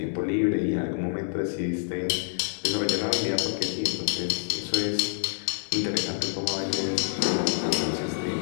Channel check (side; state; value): right; silent; digital silence